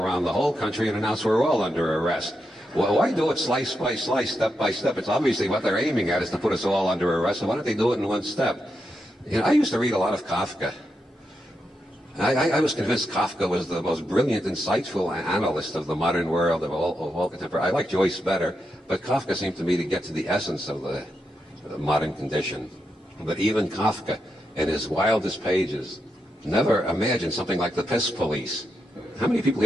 the whole country and announce we're all under arrest. Well, why do it slice by slice, step by step? It's obviously what they're aiming at is to put us all under arrest, so why don't they do it in one step? You know, I used to read a lot of Kafka. I was convinced Kafka was the most brilliant, insightful analyst of the modern world, of all contemporary. I like Joyce better, but Kafka seemed to me to get to the essence of the modern condition. But even Kafka, in his wildest pages, never imagined something like the piss police. How many people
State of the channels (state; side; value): normal; both; correlation 0.85